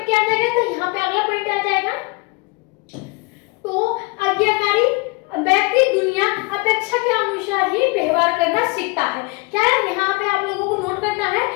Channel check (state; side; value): quieter; right; 27.2 dB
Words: क्या आ जाएगा, तो यहाँ पे अगला पॉइंट आ जाएगा, तो आज्ञाकारी व्यक्ति दुनिया अपेक्षा के अनुसार ही व्यवहार करना सीखता है। क्या है, यहाँ पे आप लोगों को नोट करना है,